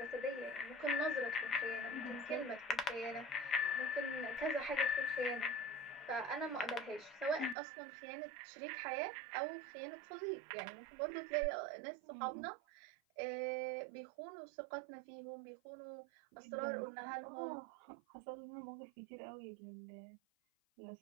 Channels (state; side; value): drops out; left; at 7.6 s